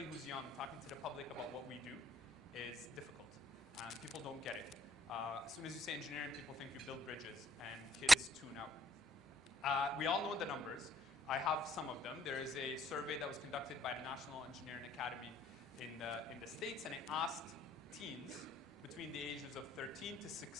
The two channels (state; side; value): normal; both; correlation 0.66